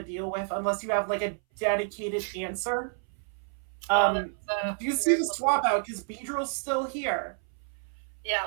deal with unless you have like a dedicated answer. Do you see the swap out because Beedrill's still here? Yeah,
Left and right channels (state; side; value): silent; left; 58 dB below the other